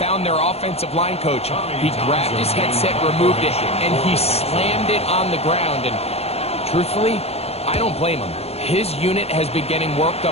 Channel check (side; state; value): right; late; 0.30 ms